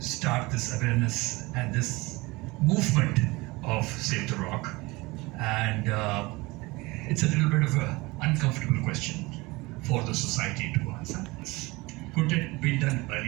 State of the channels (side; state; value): left; quieter; 23.0 dB